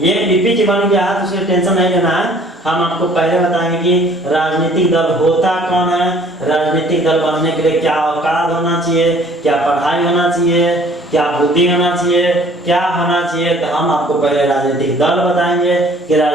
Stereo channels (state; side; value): normal; both; correlation 0.55